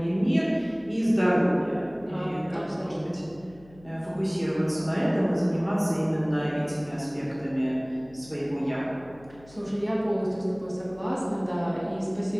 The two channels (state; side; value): noise; left; hum, 24 dB below the sound